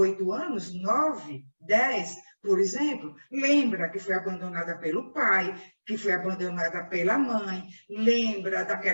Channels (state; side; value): inverted; both; correlation -1.00